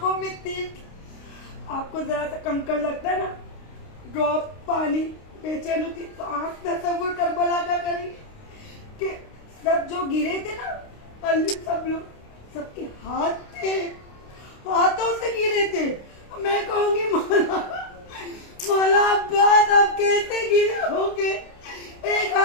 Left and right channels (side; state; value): right; late; 29 ms